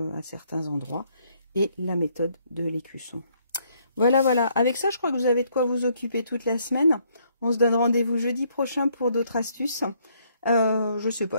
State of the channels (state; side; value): inverted; both; correlation -0.69